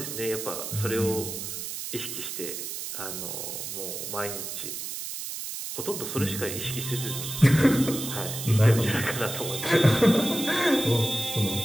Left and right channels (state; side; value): noise; right; hiss, 6 dB below the sound